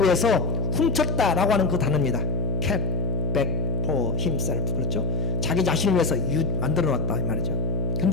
위해서 훔쳤다라고 하는 그 단어입니다. kept back for himself. 그렇죠? 자기 자신을 위해서 만들어놨다 이 말이죠.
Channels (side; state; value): left; noise; hum, 2 dB below the sound